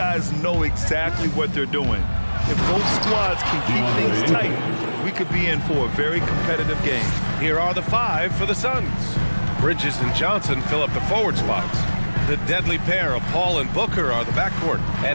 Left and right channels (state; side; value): inverted; both; correlation -1.00